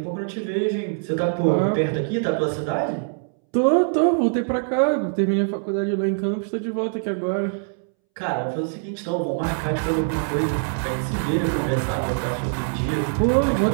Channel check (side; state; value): left; silent; 63 dB below the other